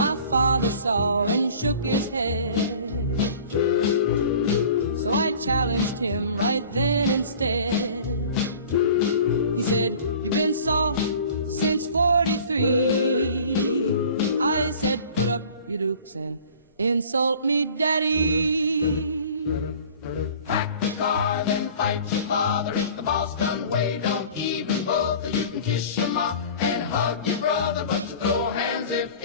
father saw and shook his head, so I challenged him right then instead. He said, you've been soft since 43. I said, put up your dukes and insult me, daddy. Pack the car, then fight your father. If the Boston way don't even bother, you can kiss your mom and hug your brother, but you throw hands if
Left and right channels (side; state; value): both; inverted; correlation -0.45